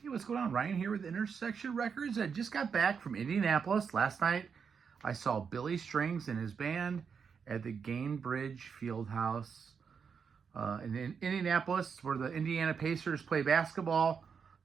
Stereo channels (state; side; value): quieter; left; 6.3 dB